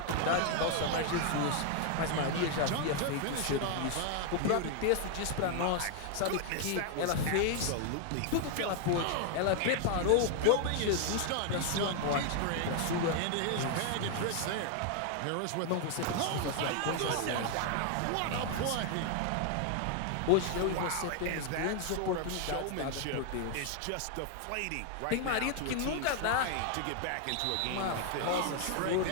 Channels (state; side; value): different; both; correlation 0.00